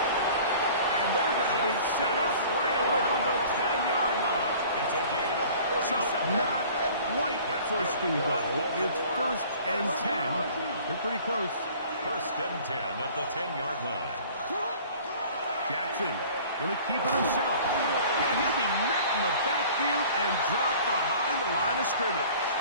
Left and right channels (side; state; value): both; inverted; correlation -0.48